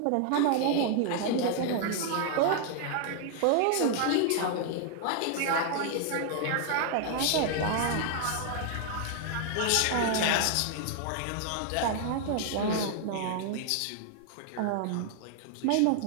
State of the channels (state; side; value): different; both; correlation 0.00